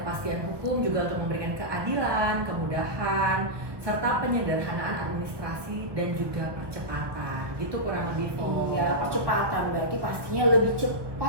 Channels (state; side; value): late; left; 1.1 ms